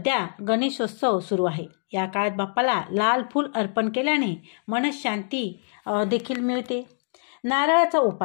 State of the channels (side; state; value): right; silent; digital silence